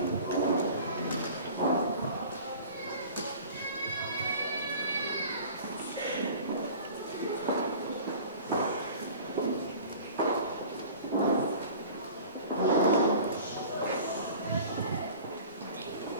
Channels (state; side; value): inverted; both; correlation -0.43